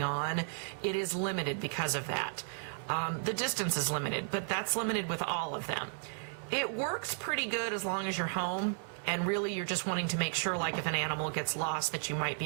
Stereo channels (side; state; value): left; silent; 55 dB below the other